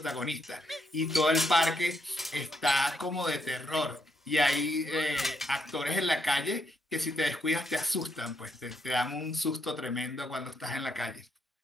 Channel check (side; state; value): both; normal; correlation 0.77